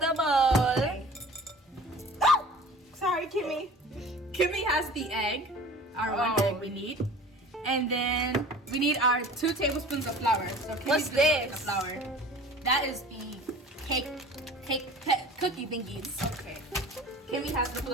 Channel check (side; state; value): both; normal; correlation 0.43